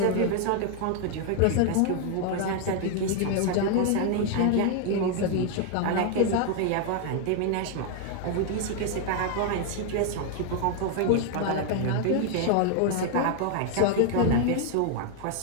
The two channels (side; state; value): both; different; correlation 0.00